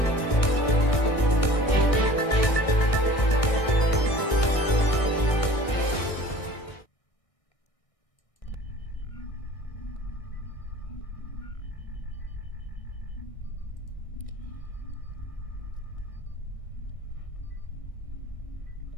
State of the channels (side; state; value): right; late; 1.6 ms